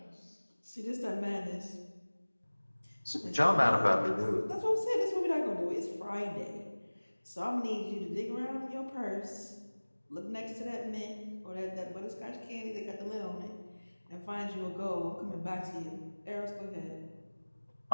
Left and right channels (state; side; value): inverted; both; correlation -1.00